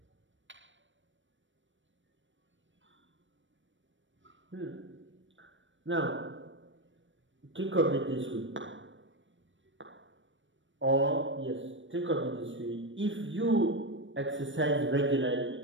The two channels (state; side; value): late; left; 0.55 ms